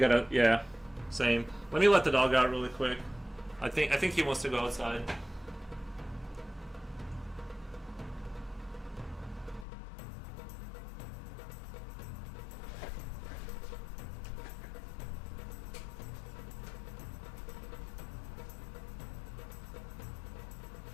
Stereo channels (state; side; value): drops out; right; at 9.7 s